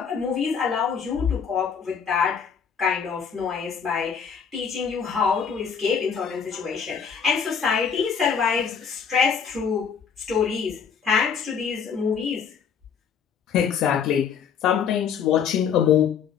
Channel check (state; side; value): quieter; right; 6.9 dB